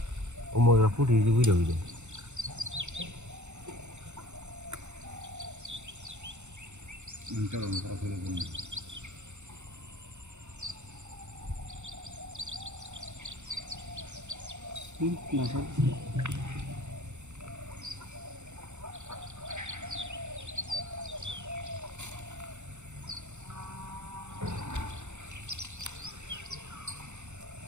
উমরা ফুটি যে বুঝে বুঝে কাল আমি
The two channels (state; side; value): late; left; 0.83 ms